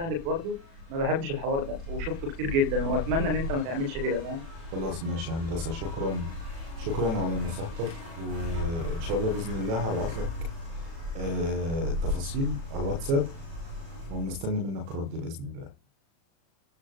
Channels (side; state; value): left; late; 36 ms